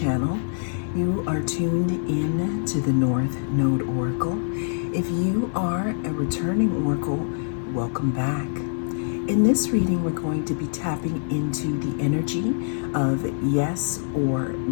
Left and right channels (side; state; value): right; silent; 62 dB below the other